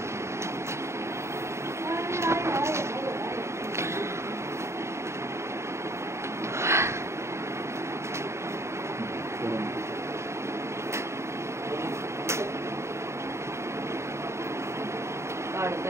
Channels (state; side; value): late; left; 0.13 ms